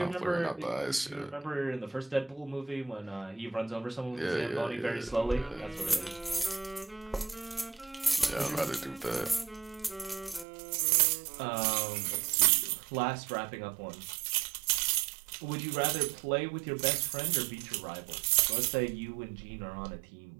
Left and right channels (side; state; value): left; drops out; at 10.5 s